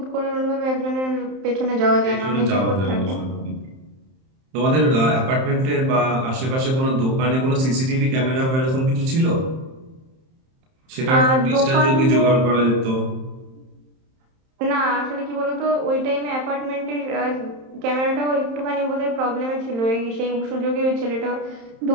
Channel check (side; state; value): left; late; 31 ms